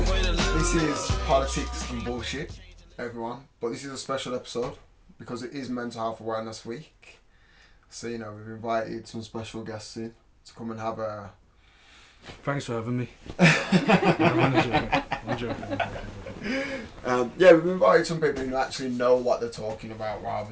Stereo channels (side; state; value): both; identical; correlation 1.00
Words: this is politics and bullshit, everyone. But this is a special episode because it is Mental Health Awareness Week. So we've invited some special guests in to come and have a. Thanks for having me. I'm joking. We've invited some people who actually know what they're talking about